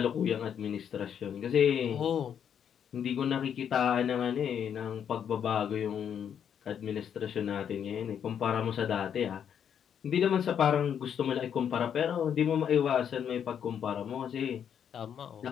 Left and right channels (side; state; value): right; quieter; 8.4 dB